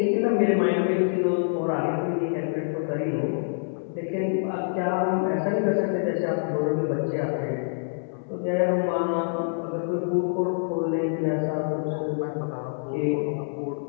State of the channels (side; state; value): right; silent; 61 dB below the other